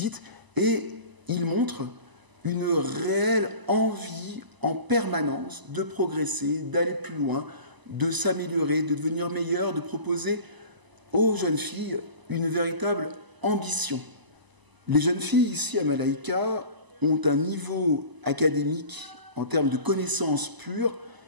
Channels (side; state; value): left; late; 1.0 ms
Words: et ils montrent une réelle envie en permanence de progresser, d'aller plus loin, de s'améliorer, de devenir meilleur, de proposer aux jeunes filles une véritable ambition. Les jeunes filles ici à Malaika ont un niveau académique en termes de connaissances pures